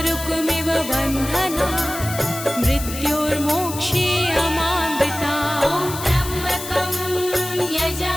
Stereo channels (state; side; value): noise; left; hiss, 9 dB below the sound